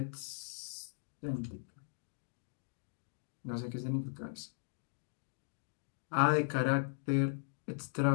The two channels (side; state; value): right; silent; digital silence